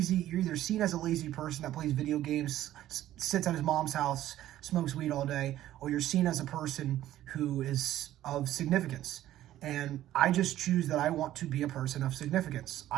seen as a lazy person that plays video games, sits at his mom's house, smokes weed all day, or you're seen as a person who is of significance. And I just choose that I want to be a person of significance.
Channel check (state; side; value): quieter; left; 13.4 dB